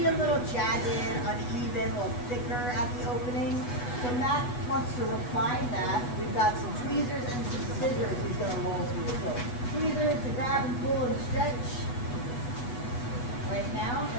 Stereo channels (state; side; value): late; right; 8.2 ms